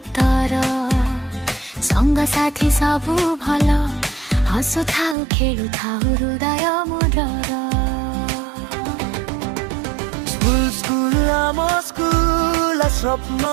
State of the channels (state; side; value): drops out; left; at 5.2 s